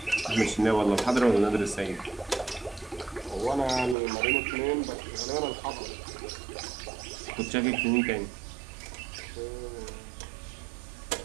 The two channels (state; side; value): drops out; left; at 4.0 s